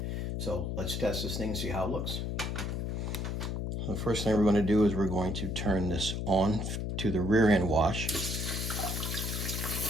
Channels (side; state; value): left; noise; hum, 2 dB below the sound